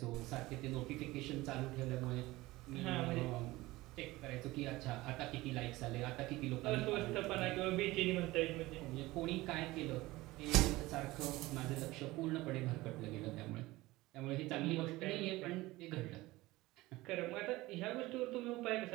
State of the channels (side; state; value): left; quieter; 19.4 dB